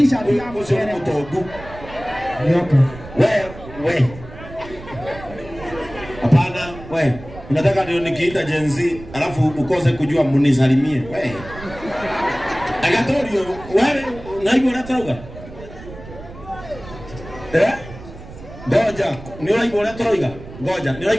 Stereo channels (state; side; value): noise; right; rumble, 16 dB below the sound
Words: yangu sio mtogu. Nyoka. We. Hapana, we. Unataka ndio nikiita Gen Z alafu ukose kujua munisalimie. We. Agatorio, wewe unaibu unatoroga? Goja, ni unaibu unatoroga? Goja, ni